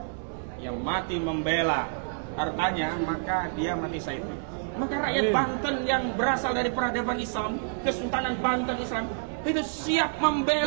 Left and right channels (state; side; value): silent; left; digital silence